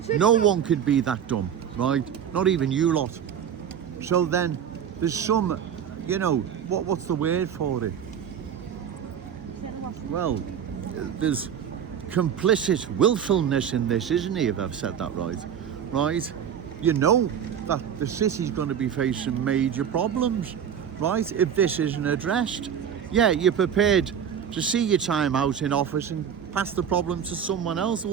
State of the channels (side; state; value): left; quieter; 8.5 dB